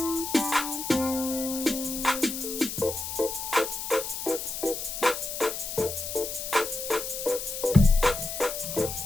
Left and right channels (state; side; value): noise; left; hiss, 6 dB below the sound